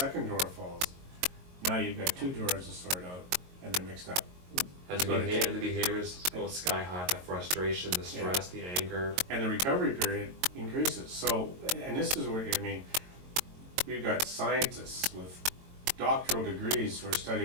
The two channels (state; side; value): late; left; 22 ms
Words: drawer falls, now you've got 2 drawers to sort out, and they're mixed up. As the behaviors go sky high, the frustration, the stress, the anger. And the recovery period increases. So, and this is where, I mean, we've got scientists with doctoral degrees who are